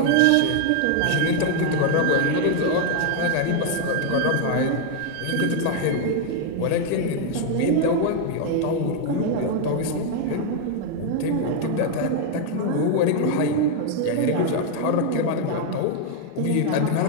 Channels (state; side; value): different; both; correlation 0.00